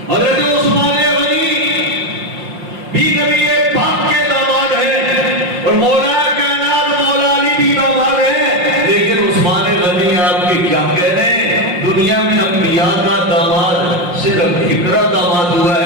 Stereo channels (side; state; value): left; late; 5.7 ms